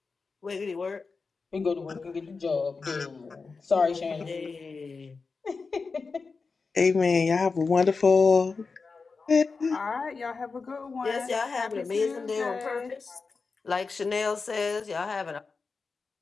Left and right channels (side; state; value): right; quieter; 4.5 dB